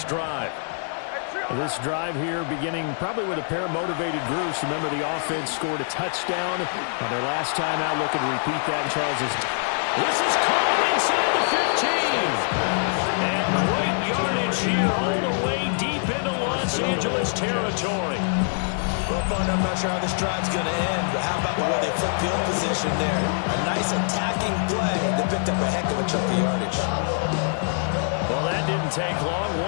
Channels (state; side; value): silent; right; 56 dB below the other